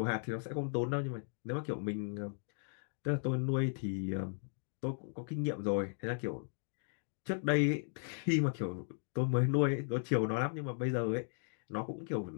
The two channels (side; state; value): right; silent; digital silence